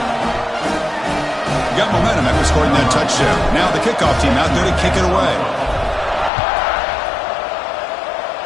Got momentum after scoring that touchdown. Now the kickoff team out there to kick it away.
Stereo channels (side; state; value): right; drops out; at 6.3 s